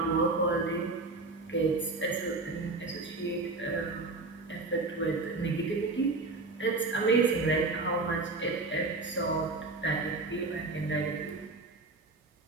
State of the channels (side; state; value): left; quieter; 3.4 dB